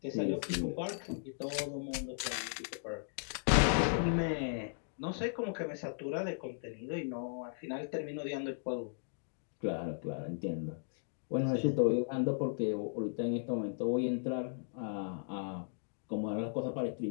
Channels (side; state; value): right; silent; digital silence